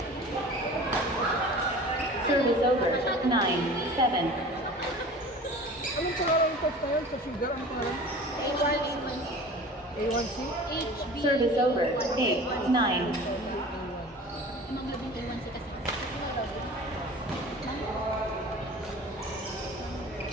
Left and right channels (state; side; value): normal; both; correlation 0.40